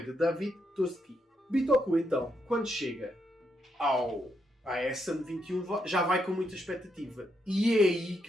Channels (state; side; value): normal; both; correlation 0.79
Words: de David Toski. Bitoku, então, quando chega à Essen 21, já vai com muita expectativa. E é aí